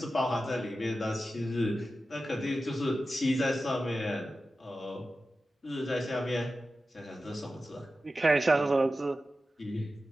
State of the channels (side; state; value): both; normal; correlation 0.93